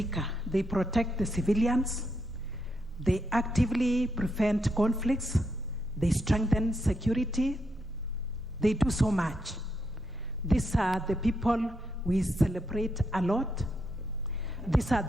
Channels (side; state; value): both; normal; correlation 0.81